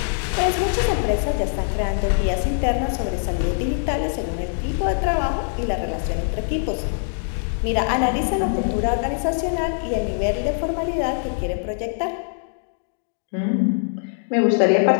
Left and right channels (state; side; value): silent; right; digital silence